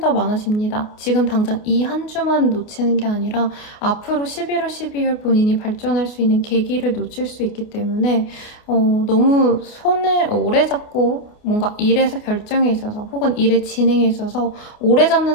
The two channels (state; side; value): late; right; 29 ms